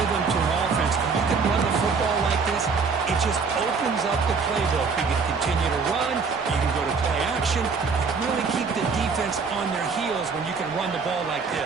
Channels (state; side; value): quieter; left; 5.1 dB